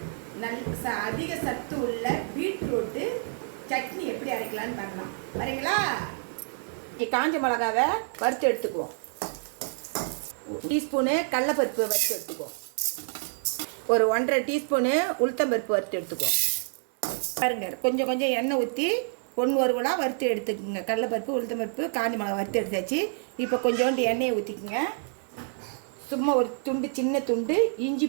அதிக சத்து உள்ள பீட்ரூட்டு சட்னி எப்படி அரைக்கலான்னு பார்க்கலாம். வரீங்களா? காஞ்ச மிளகாவை வறுத்து எடுத்துக்குவோம். டீஸ்பூனு கடலைப்பருப்பு வறுத்து எடுத்துக்குவோம். ஒரு 1.5 டீஸ்பூனு உளுத்தம்பருப்பு வறுத்து எடுத்துக்குவோம். பாருங்க, கொஞ்சம் கொஞ்சம் எண்ணெய் ஊற்றி ஒன்று ஒருவலாக வறுத்து எடுத்துக்கோங்க. கடலைப்பருப்பு உளுத்தம்பருப்பு காஞ்ச மிளகா வறுத்து எடுத்தாச்சு. இப்போ கொஞ்சோண்டு எண்ணெயை ஊற்றிக்குங்க. சும்மா ஒரு துண்டு, சின்ன துண்டு இஞ்சி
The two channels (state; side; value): silent; left; digital silence